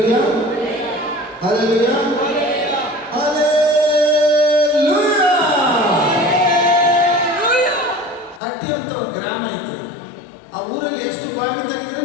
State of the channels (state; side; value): drops out; right; at 8.4 s